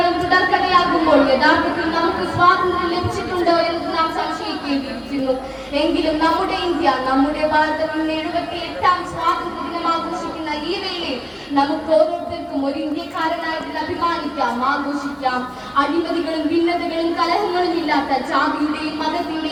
തുടർക്കഥയാകുമ്പോൾ യഥാർത്ഥത്തിൽ നമുക്ക് സ്വാതന്ത്ര്യം ലഭിച്ചിട്ടുണ്ടോ എന്ന് നാം സംശയിക്കേണ്ടിയിരിക്കുന്നു. എങ്കിലും നമ്മുടെ ഇന്ത്യ, നമ്മുടെ ഭാരതം ഇന്ന് 78ാം സ്വാതന്ത്ര്യ ദിനം ആഘോഷിക്കുന്ന ഈ വേളയിൽ നമുക്ക് ഓരോരുത്തർക്കും ഒരു ഇന്ത്യക്കാരനായിട്ട് അഭിമാനിക്കാം, ആഘോഷിക്കാം. അഴിമതികളും ഭിന്നതകളും കലഹങ്ങളും ഇല്ലാത്ത ജാതിയുടെയും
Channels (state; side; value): identical; both; correlation 1.00